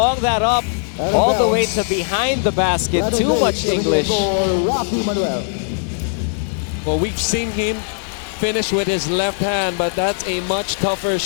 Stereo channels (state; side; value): silent; right; digital silence